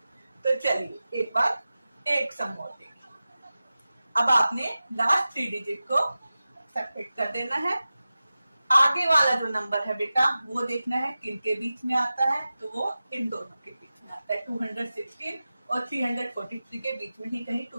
तो चलिए एक बार एक सम और देखिए। अब आपने लास्ट 3 डिजिट को सबट्रैक्ट कर देना है। आगे वाला जो नंबर है बेटा वो देखना है किन के बीच में आता है। तो वो इन दोनों के बीच में आता है। 216 और 343 के बीच में ही कहीं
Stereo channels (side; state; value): both; inverted; correlation -0.95